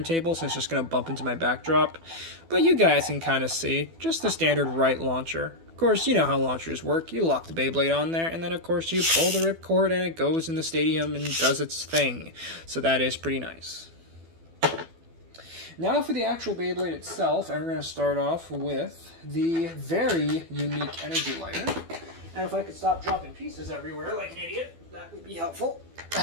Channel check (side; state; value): left; late; 12 ms